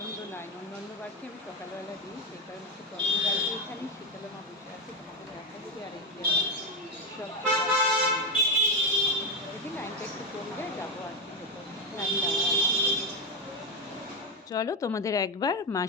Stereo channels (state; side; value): normal; both; correlation 0.11